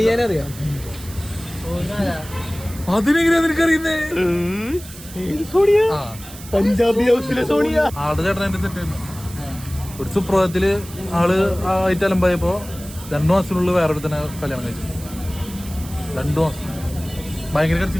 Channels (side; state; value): right; noise; hiss, 16 dB below the sound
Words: അതിനെങ്ങനെയാ നിനക്കറിയുന്നേ? പഞ്ചാബി ഹൗസിലെ സോണിയ. ആളുടെ ചേട്ടൻ എന്റെ തെറ്റായിരുന്നു. ഒരു സുപ്രഭാതത്തില് ആള് ആയിട്ട് അലമ്പായപ്പോ 2 മാസത്തിനുള്ളിൽ വേറൊരു തന്നെ കല്യാണം കഴിച്ചു. 2 മാസം ഭയങ്കര